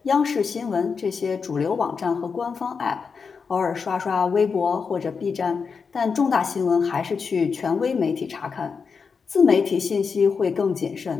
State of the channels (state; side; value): quieter; right; 5.5 dB